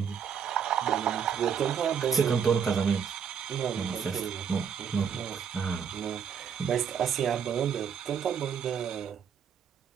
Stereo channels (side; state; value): left; quieter; 7.4 dB